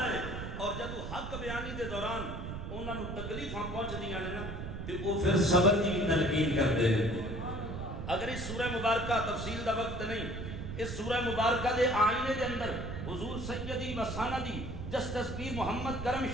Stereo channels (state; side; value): noise; right; rumble, 7 dB below the sound